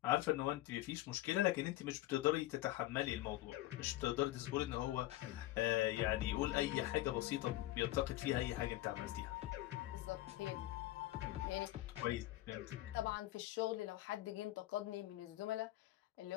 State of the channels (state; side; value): quieter; right; 16.3 dB